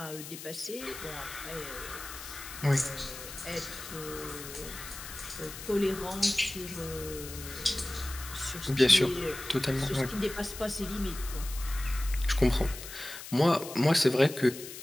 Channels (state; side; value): noise; left; hiss, 11 dB below the sound